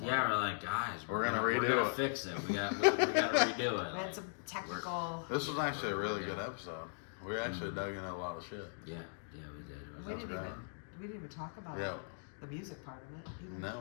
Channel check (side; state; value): right; silent; digital silence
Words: Yeah, like, we're like, guys, we're gonna redo it. Fix it. We gotta redo it. We had some technical. This was actually a really good episode. We actually dug into a lot of shit. Yeah, we did. It was We didn't great. even talk about the music part of it either.